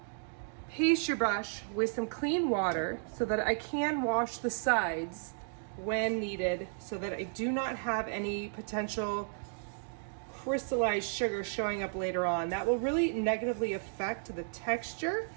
pastry brush with some clean water so that I can wash the sides when needed, so that I do not have any potential crystallized sugar showing up later on. That will really negatively affect the texture.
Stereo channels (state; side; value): silent; left; digital silence